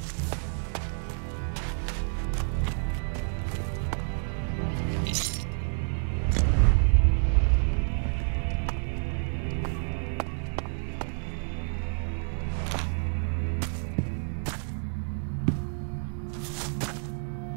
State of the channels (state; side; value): silent; left; 59 dB below the other